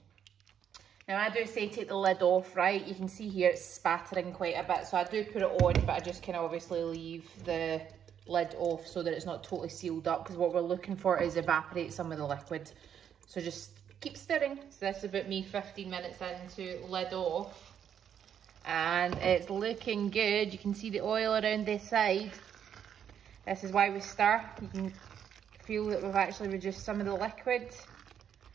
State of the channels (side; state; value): left; quieter; 8.8 dB